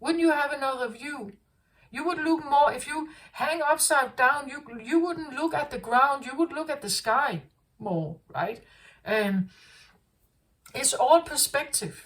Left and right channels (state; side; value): identical; both; correlation 1.00